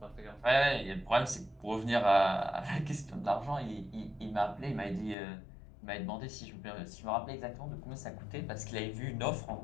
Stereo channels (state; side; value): drops out; right; at 5.2 s